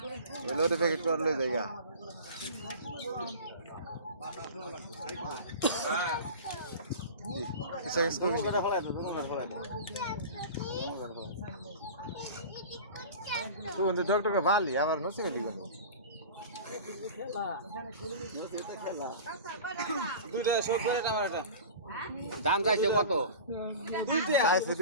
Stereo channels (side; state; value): both; inverted; correlation -0.36